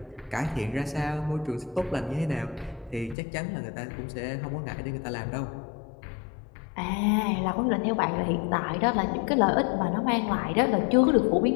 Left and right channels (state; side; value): drops out; right; at 3.2 s